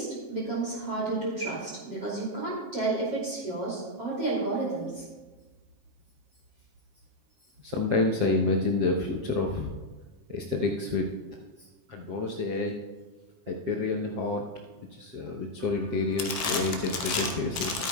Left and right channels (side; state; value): left; late; 7.5 ms